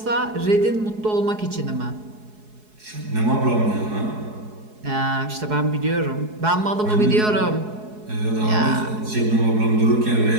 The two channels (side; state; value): left; late; 4.7 ms